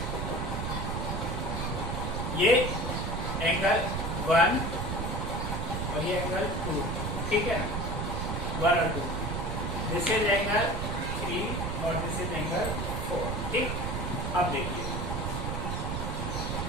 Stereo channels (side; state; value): right; noise; rumble, 2 dB below the sound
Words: ये एंगल 1 और ये एंगल 2, ठीक है ना, 1 और 2। दिस इज एंगल 3 और दिस इज एंगल 4। ठीक, अब देखिए,